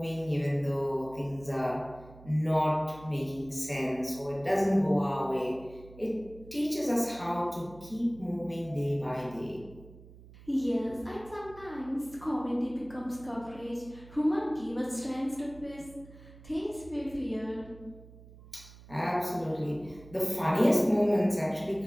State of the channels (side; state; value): right; noise; hum, 20 dB below the sound